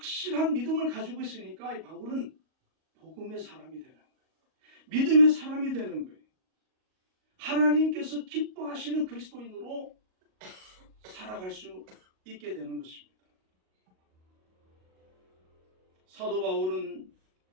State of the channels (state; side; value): late; left; 38 ms